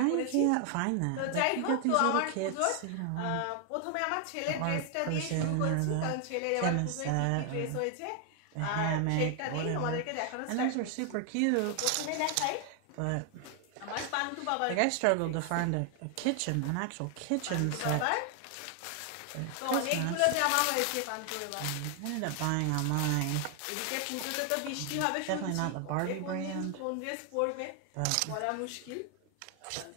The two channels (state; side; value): different; both; correlation 0.00